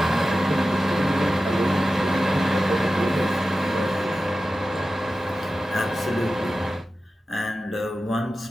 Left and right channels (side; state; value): both; normal; correlation 0.94